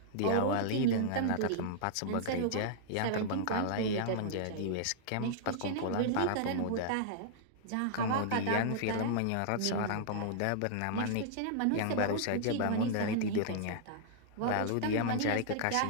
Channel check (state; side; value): different; both; correlation -0.01